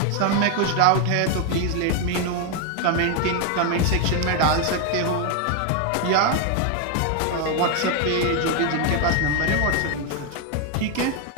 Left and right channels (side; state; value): both; different; correlation 0.01